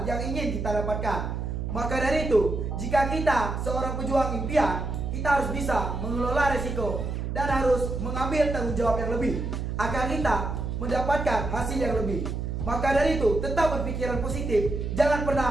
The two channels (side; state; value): right; noise; hum, 3 dB below the sound